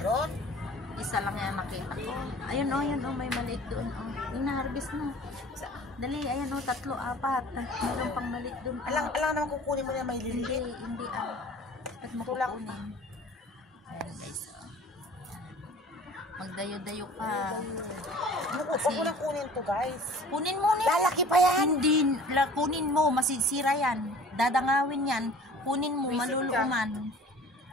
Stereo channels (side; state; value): both; normal; correlation 0.46